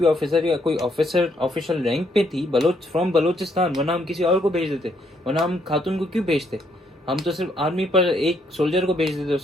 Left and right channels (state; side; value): normal; both; correlation 0.72